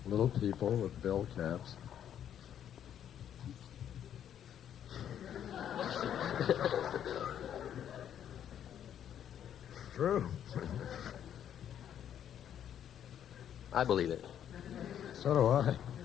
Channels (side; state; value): right; quieter; 9.7 dB